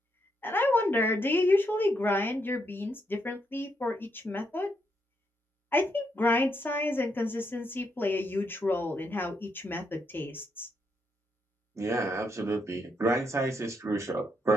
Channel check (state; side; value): normal; both; correlation 0.78